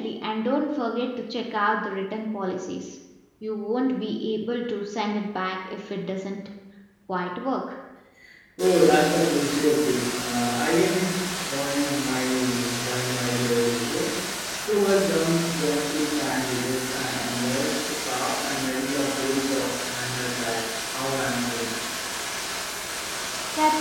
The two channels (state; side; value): identical; both; correlation 1.00